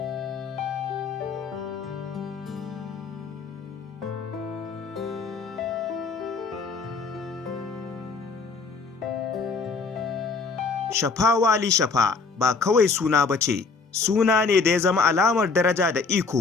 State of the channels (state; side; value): quieter; right; 4.5 dB